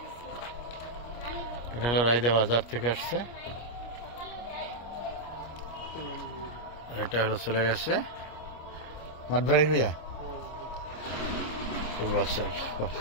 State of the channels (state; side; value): late; right; 25 ms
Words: এটা হলো রায়দা বাজার থেকে আসছে, এটা হলো চলে গেছে মাঠবাড়ি হইয়া পূর্বাচল